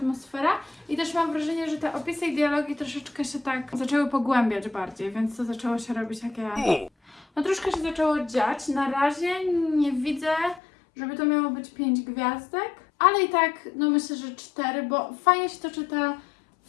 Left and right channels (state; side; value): drops out; right; at 10.6 s